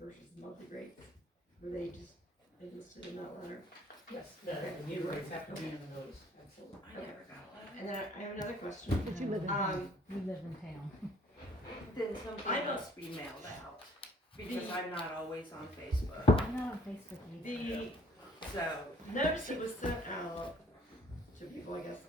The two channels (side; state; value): both; normal; correlation 0.60